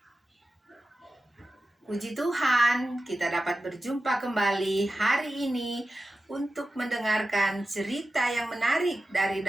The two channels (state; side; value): normal; both; correlation 0.94